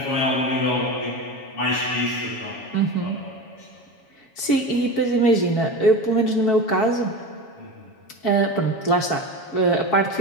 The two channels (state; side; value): late; right; 7.3 ms